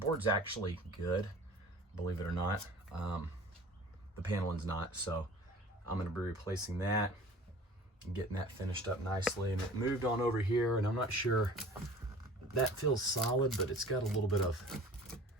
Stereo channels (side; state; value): both; normal; correlation 0.45